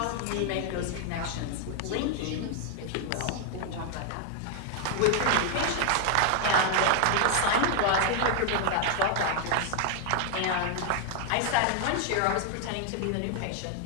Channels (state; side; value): different; both; correlation 0.00